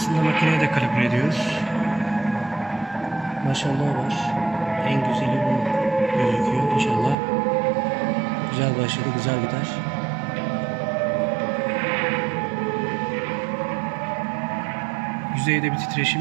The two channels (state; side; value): drops out; left; at 7.2 s